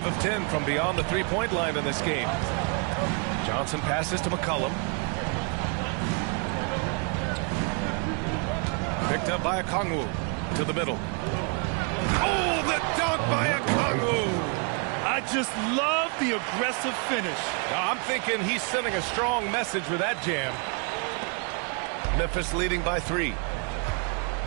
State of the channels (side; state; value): left; quieter; 35.8 dB